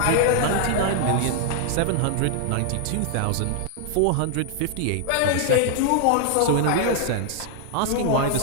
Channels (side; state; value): both; different; correlation 0.00